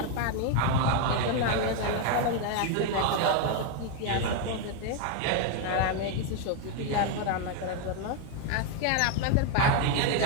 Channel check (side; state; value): both; different; correlation 0.01